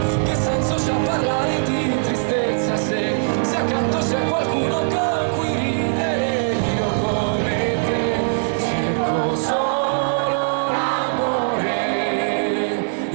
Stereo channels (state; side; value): silent; left; digital silence